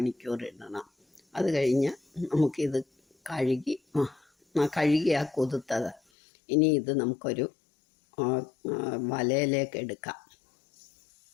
ഇടണം. അത് കഴിഞ്ഞ് നമുക്കിത് കഴുകി ആ കുതിർത്തത് ഇനി ഇത് നമുക്കൊരു വലയിലേക്ക് എടുക്കാം.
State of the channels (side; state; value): right; drops out; at 6.0 s